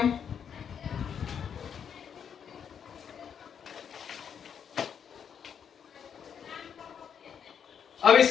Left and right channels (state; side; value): quieter; right; 7.8 dB